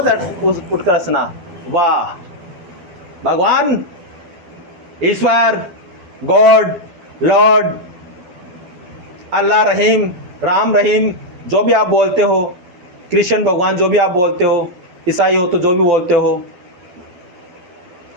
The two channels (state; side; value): late; left; 12 ms